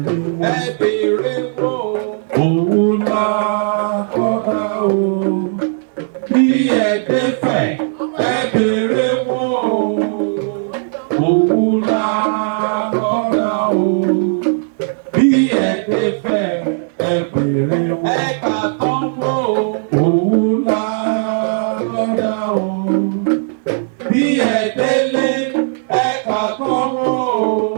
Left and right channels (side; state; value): left; silent; digital silence